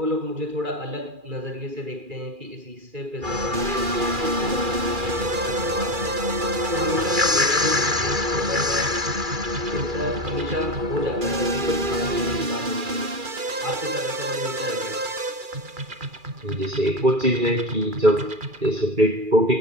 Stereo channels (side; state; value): left; late; 2.4 ms